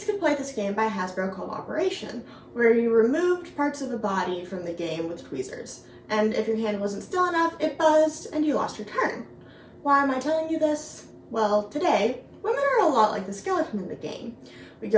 could play this game by Hasbro called Operation, where you removed parts of a body from the game with tweezers. And if your hand wasn't still enough, it buzzed and you lost your turn. Why am I telling you this? Well, today, women are a lot like the skeleton in the game. We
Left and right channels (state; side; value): identical; both; correlation 1.00